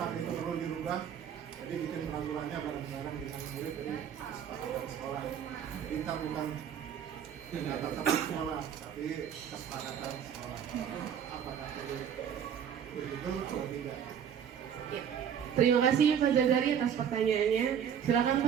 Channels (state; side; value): quieter; left; 8.5 dB